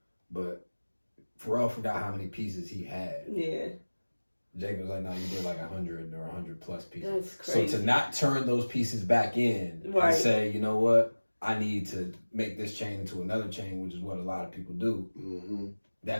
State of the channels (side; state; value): both; inverted; correlation -1.00